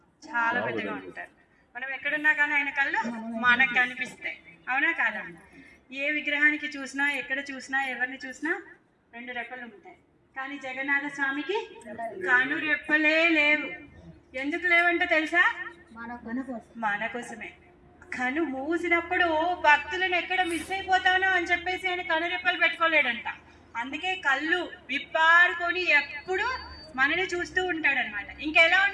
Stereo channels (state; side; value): identical; both; correlation 1.00